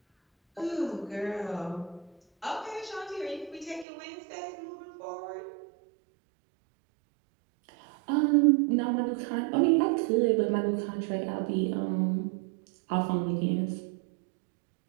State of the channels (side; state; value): left; drops out; at 3.9 s